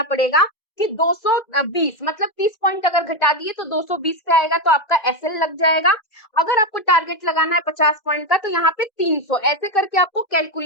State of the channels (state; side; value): late; right; 2.0 ms